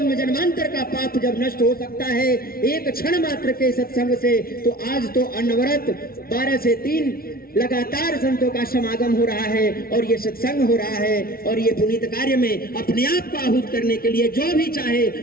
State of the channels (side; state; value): right; late; 0.43 ms